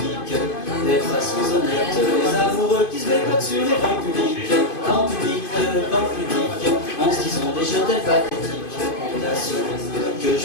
des façons honnêtes, les amoureux qui se bécotent sur les bancs publics, en se disant des je t'aime pathétiques. Que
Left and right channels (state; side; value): late; right; 2.5 ms